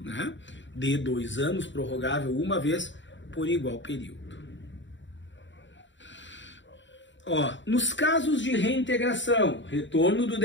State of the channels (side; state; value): right; late; 0.54 ms